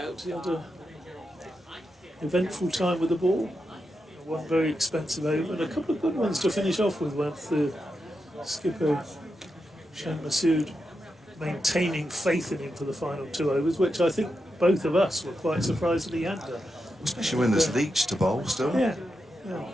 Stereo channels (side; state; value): both; normal; correlation 0.87